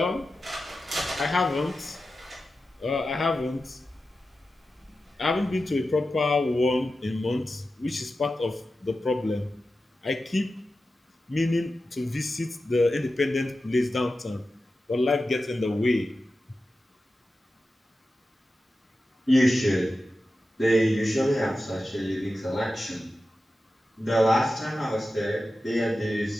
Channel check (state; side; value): normal; both; correlation 0.92